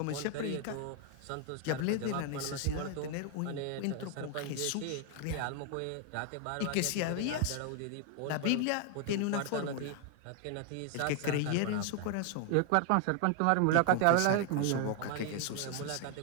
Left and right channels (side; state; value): both; different; correlation 0.00